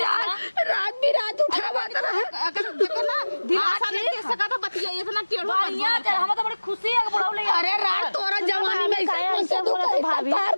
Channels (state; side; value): inverted; both; correlation -1.00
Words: रात बिरात उठावत रहन। अगर देखो ना दिलासा नहीं दे सका तो बतिया इतना टेढ़ो बढ़िया हम तो बड़ी खुशी है कि बुढ़ाऊ ले अरे रात तोरा जवानी में ऐसे बोलत भाभी प्यार